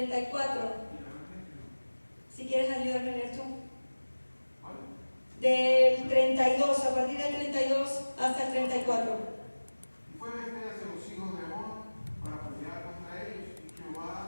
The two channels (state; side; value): inverted; both; correlation -1.00